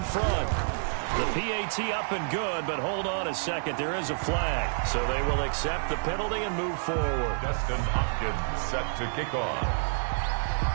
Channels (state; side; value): silent; left; 59 dB below the other